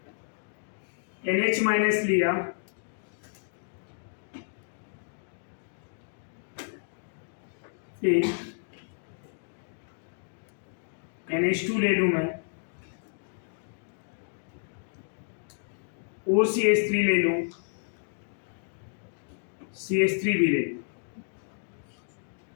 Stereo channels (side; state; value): right; silent; digital silence